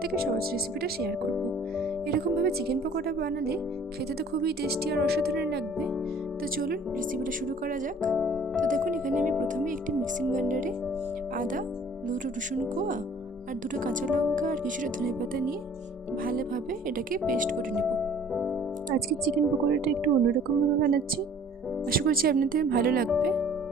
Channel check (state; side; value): normal; both; correlation 0.52